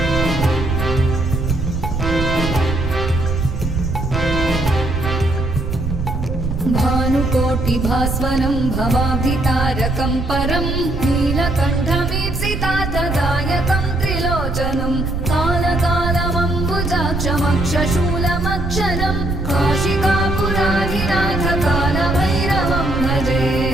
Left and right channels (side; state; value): right; noise; rumble, 3 dB below the sound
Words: भानुकोटिभास्वरं भवाब्धितारकं परं नीलकण्ठमीप्सितार्थदायकं त्रिलोचनं कालकालमम्बुजाक्षमक्षशूलमक्षरं काशिकापुराधिनाथकालभैरवं भजे।